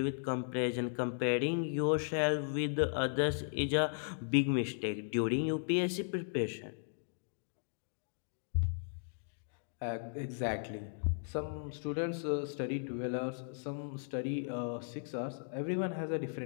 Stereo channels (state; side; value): silent; right; digital silence